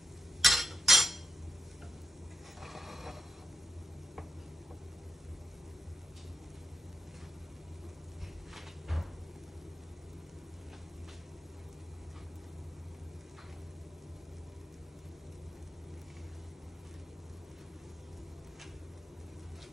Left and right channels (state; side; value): normal; both; correlation 0.81